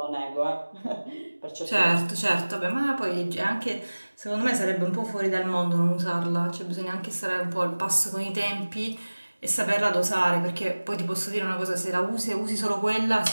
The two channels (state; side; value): inverted; both; correlation -1.00